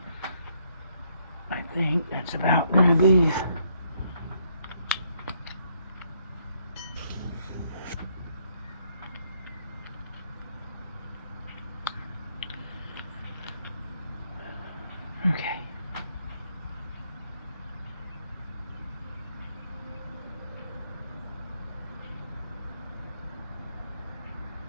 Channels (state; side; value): inverted; both; correlation -0.72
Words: I think that's about going to be okay.